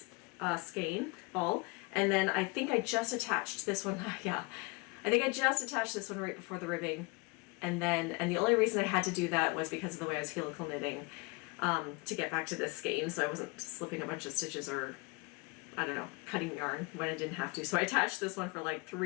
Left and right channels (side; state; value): right; quieter; 28.1 dB